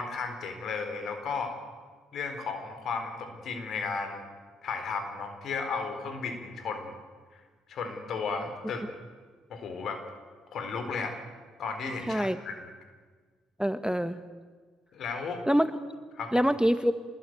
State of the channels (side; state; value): both; normal; correlation 0.85